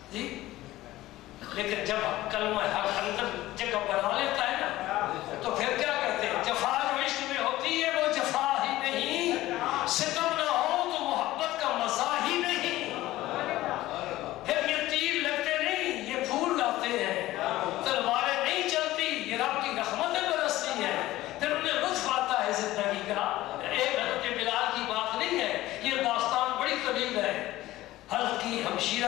جی. لیکن جب کلمہ حق اندر جگہ بنا لیتا ہے نا تو پھر کیا کرتے ہیں؟ جفا جو عشق میں ہوتی ہے وہ جفا ہی نہیں، ستم نہ ہو تو محبت کا مزہ ہی نہیں. پھر یہ تیر لگتے نہیں، یہ پھول لاتے ہیں. تلواریں نہیں چلتی، یہ رب کی رحمتیں برستی ہیں. پھر انہیں لطف آتا ہے زندگی کا. ایک حضرت بلال کی بات نہیں ہے، یہ داستان بڑی طویل ہے. حضرت کی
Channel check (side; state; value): right; quieter; 16.4 dB